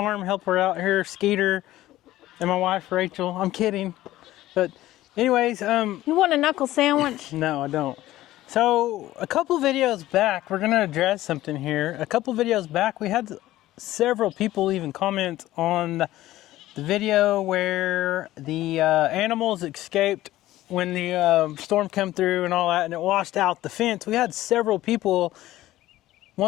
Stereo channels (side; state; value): right; quieter; 15.5 dB